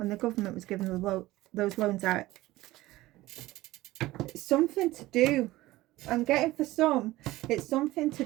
loans out, it's something to do, I'm getting for some, it's something to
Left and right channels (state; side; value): quieter; left; 17.7 dB